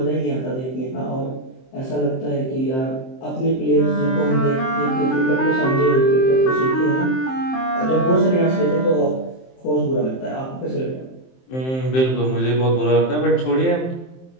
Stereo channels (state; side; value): late; right; 23 ms